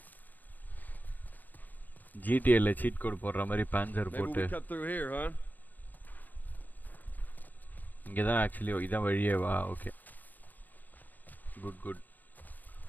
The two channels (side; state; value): right; late; 0.084 ms